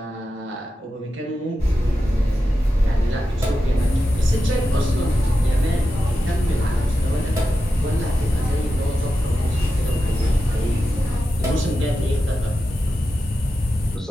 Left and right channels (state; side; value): normal; both; correlation 0.91